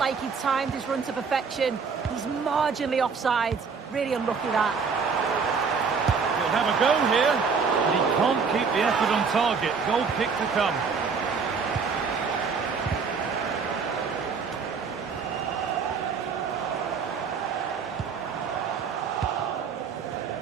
he timed his run to perfection. He's marginally offside. Really unlucky that. He'll have a go here, but he can't keep the effort on target. Goal kick to come.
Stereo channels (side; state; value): left; quieter; 5.5 dB